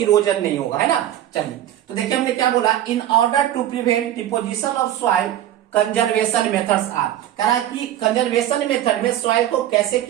नहीं होगा, है ना। चलिए तो देखिए हमने क्या बोला, in order to prevent deposition of soil conservation methods are. कह रहा है कि कंजर्वेशन मेथड में सॉइल को कैसे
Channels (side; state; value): left; quieter; 12.2 dB